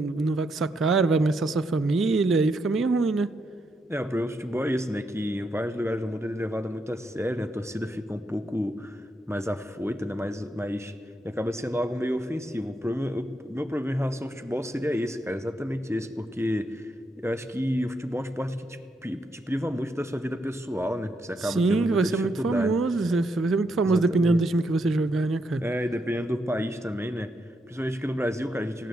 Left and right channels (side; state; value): both; normal; correlation 0.79